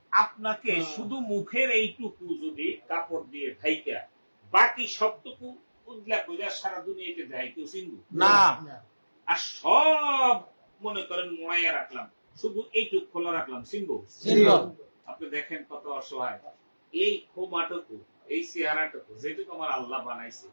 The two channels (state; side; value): inverted; both; correlation -1.00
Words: আপনাকে শুধু মুখের এইটুকু যদি কাপড় দিয়ে ঢাইকা বাকি সবটুকু উদলা কইরা সারা দুনিয়াতে যায় কেউ চিনবো না। আর সব মনে করেন মোড়াইয়া রাখলাম, শুধু এইটুক খোলা রাখলাম, চিনবো? আপনি দেখেন কত অসহায়। এই খোমাটুকু, এই চেহারাটুকু যেটুকু আমার আল্লাহ বানাইছে,